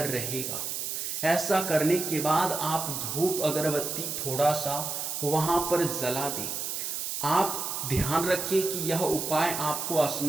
रहेगा। ऐसा करने के बाद आप धूप अगरबत्ती थोड़ा सा वहां पर जला दें। आप ध्यान रखिए कि यह उपाय आपको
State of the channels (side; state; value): right; noise; hiss, 3 dB below the sound